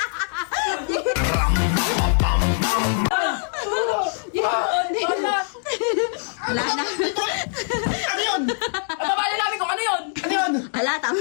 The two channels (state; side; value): silent; right; 64 dB below the other